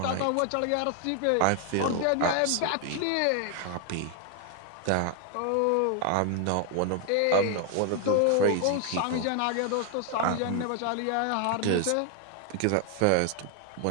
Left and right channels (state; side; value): different; both; correlation 0.00